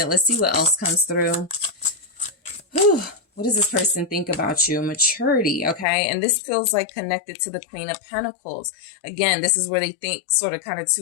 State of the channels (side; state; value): right; drops out; at 5.9 s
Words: Let's see what else comes through. Whew. What does this person think about you? Maturity, okay? And this feels like connected to the Queen of Pentacles. Again, this is where they think sort of kind of